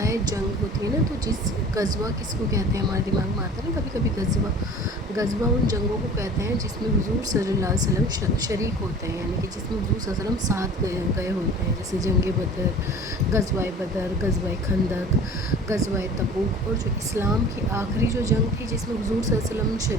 ہے، جنگ ہوتی ہے نا، تو جس غزوہ کس کو کہتے ہیں ہمارے دماغ میں آتا ہے نا کبھی کبھی غزوہ ان جنگوں کو کہتے ہیں جس میں حضور صلی اللہ علیہ وسلم شریک ہوتے ہیں، یعنی کہ جس میں حضور صلی اللہ علیہ وسلم ساتھ گئے ہوتے ہیں، جیسے جنگ بدر، غزوہ خندق، غزوہ تبوک، اور جو اسلام کی آخری جو جنگ تھی جس میں حضور صلی اللہ علیہ وسلم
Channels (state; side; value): normal; both; correlation 0.44